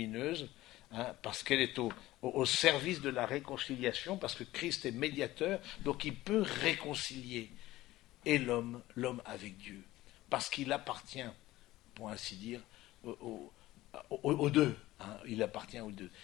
parce qu'elle est au service de la réconciliation, parce que Christ est médiateur, donc il peut réconcilier et l'homme avec Dieu, parce qu'il appartient, pour ainsi dire, aux deux. Il appartient aux deux.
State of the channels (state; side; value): quieter; right; 16.9 dB